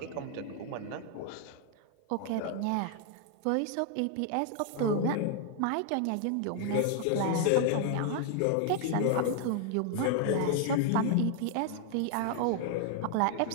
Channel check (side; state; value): both; different; correlation 0.00